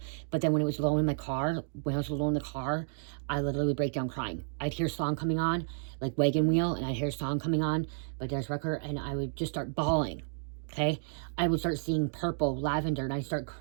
But then when it was low in my car, when I was alone in the car, I literally would break down crying. I'd hear a song coming on, like Wagon Wheel, and I'd hear a song coming on by Darius Rucker, and I would just start bawling, okay? I would start seeing purple, lavender, and I'd start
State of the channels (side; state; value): left; silent; digital silence